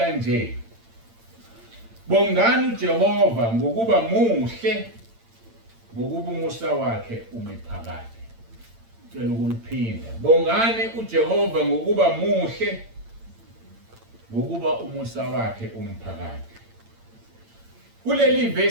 Bongani uJehova ngokuba muhle ngokuba umusa wakhe umiphakade. Ngicela ukuliphinda. Bongani uJehova ngokuba muhle ngokuba umusa wakhe umphakade. Kuleli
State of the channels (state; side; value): late; left; 8.8 ms